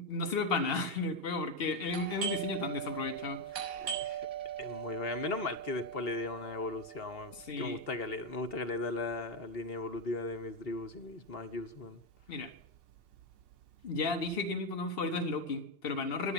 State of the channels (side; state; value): right; late; 2.7 ms